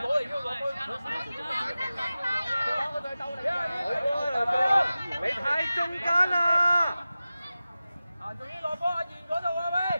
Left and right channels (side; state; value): both; inverted; correlation -0.95